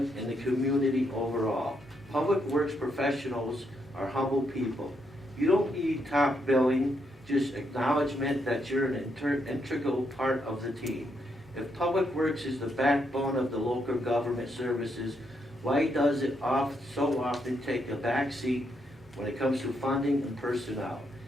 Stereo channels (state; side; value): normal; both; correlation 0.78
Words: and the community overall. Public works professionals are humble people. You don't need top billing, just acknowledgement that you're an integral part of the team. If Public Works is the backbone of the local government services, why does it so often take a back seat when it comes to funding and personnel?